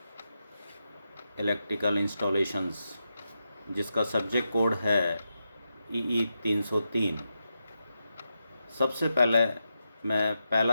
electrical installations, जिसका सब्जेक्ट कोड है EE 303। सबसे पहले मैं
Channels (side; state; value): both; inverted; correlation -0.87